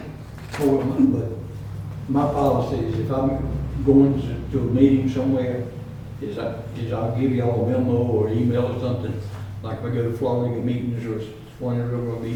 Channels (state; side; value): identical; both; correlation 1.00